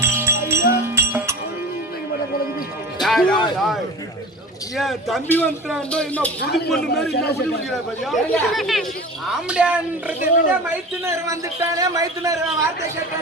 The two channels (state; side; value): normal; both; correlation 0.35